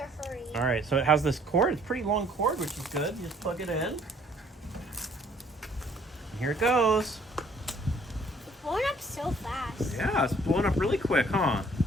hurry. all right, so it has this cord. It's a pretty long cord, which is good. You just plug it in. And here it goes. It's blowing up so fast. Yeah, it's blowing up really quick, huh?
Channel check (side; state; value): both; normal; correlation 0.60